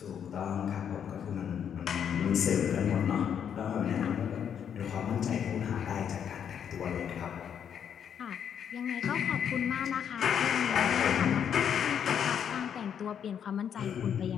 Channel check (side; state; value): right; quieter; 8.4 dB